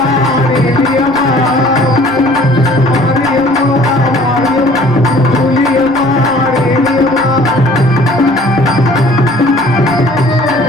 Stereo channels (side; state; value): both; normal; correlation 0.53